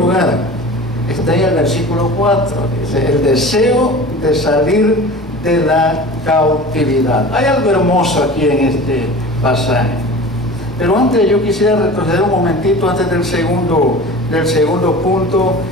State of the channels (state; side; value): normal; both; correlation 0.37